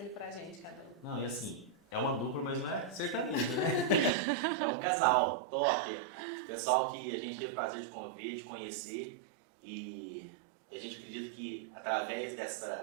ele pra gente, cada um. Não, e assim, é uma dupla, mas não é sertanejo, né? É um casal top. Pessoal que a gente teve o prazer de conviver, de conhecer, e a gente acredita que através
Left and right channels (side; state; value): left; drops out; at 4.1 s